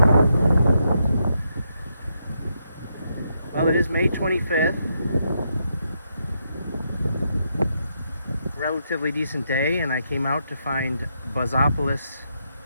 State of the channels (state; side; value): inverted; both; correlation -0.80